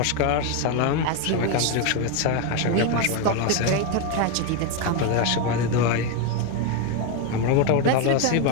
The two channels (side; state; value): both; different; correlation 0.02